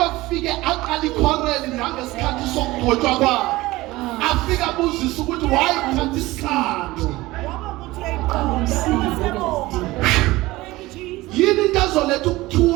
aqala ikhoreli nangesikhathi sokugqotshwa kwakhe. Afika abuzisa ukuthi wayithatha isikhathi. Yini into ezoletha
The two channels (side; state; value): left; quieter; 19.2 dB